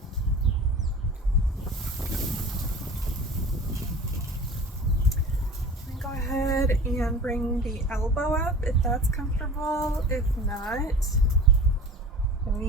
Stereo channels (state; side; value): normal; both; correlation 0.38